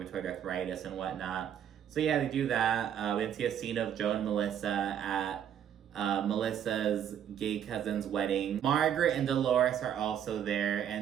arthritis and whatnot. So yeah, they do that. We can see a scene of Joe and Melissa at Melissa's gay cousin's wedding. Margaret and Dolores are also there,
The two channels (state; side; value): quieter; left; 9.5 dB